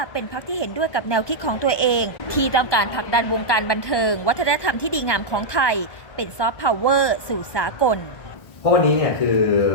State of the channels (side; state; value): right; late; 1.2 ms